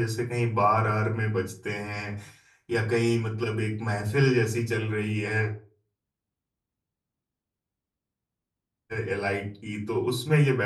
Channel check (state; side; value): identical; both; correlation 1.00